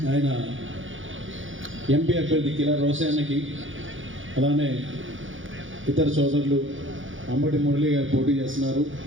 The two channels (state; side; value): late; left; 0.57 ms